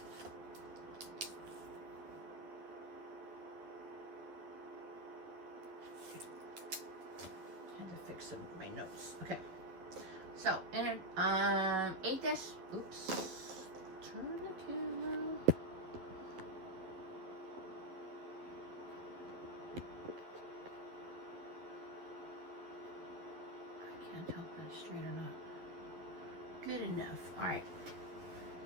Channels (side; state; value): left; late; 11 ms